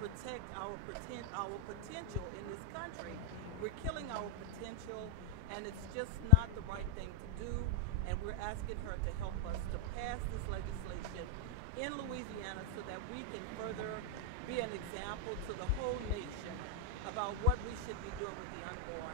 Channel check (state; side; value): different; both; correlation 0.00